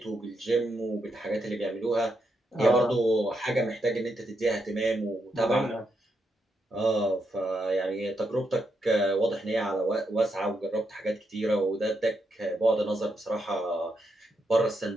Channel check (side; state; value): both; normal; correlation 0.81